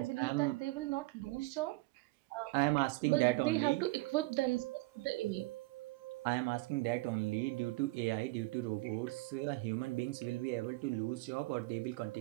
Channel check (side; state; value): left; quieter; 21.5 dB